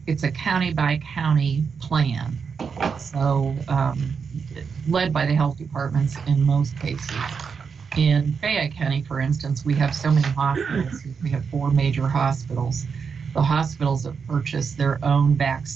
it's a county by county plan. So led by the health departments in most cases. In Fayette County, for instance, we have so many hospitals. We have 4 major hospitals. The hospitals have purchased their own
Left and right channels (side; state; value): left; quieter; 5.9 dB